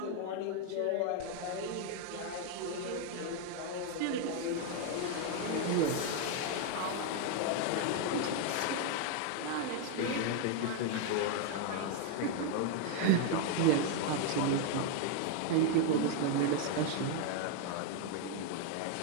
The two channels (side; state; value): both; different; correlation 0.00